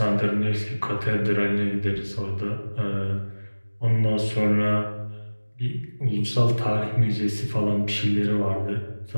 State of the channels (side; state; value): both; inverted; correlation -1.00